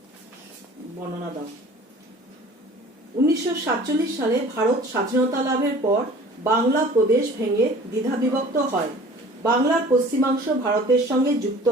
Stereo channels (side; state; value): both; normal; correlation 0.46